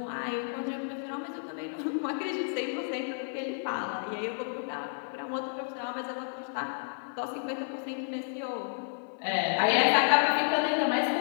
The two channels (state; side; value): silent; right; 57 dB below the other